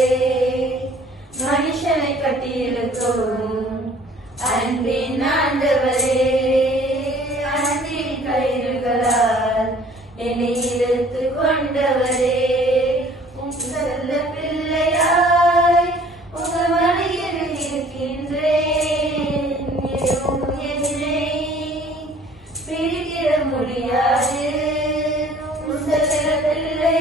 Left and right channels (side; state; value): both; normal; correlation 0.53